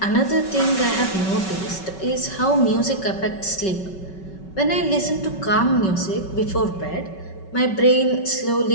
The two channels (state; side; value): late; right; 5.3 ms